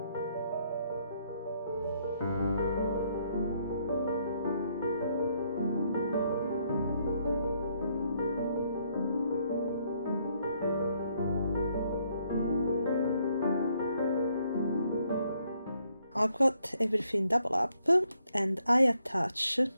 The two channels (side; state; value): both; inverted; correlation -0.72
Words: I've got everything double up, and I attach